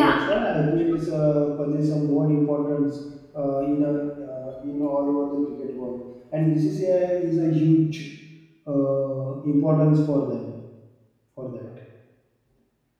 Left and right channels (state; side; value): identical; both; correlation 1.00